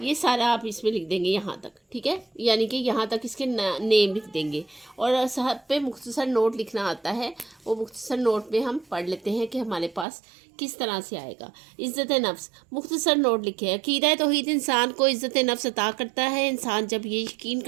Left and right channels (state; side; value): drops out; left; at 10.1 s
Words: سارا آپ اس میں لکھ دیں گے یہاں تک، ٹھیک ہے؟ یعنی کہ یہاں تک اس کے نیم لکھ دیں گے اور صاحب پہ مختصر نوٹ لکھنا آتا ہے، وہ مختصر نوٹ میں ہم پڑھ لیتے ہیں کہ ہمارے پاس کس طرح سے آئے گا۔ عزت نفس، مختصر نوٹ لکھے، عقیدہ توحید انسان کو عزت نفس عطا کرتا ہے۔ انسان جب یہ یقین